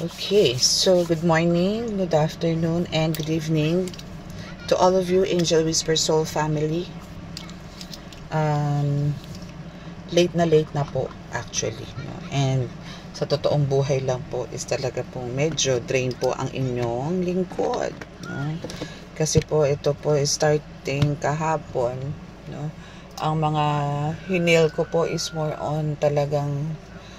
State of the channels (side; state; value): both; identical; correlation 1.00